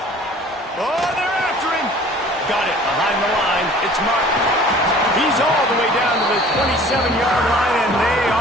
Oh, they're after him. got it behind the line. It's Martin. He's all the way down to the 27-yard line, and they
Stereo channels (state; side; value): normal; both; correlation 0.48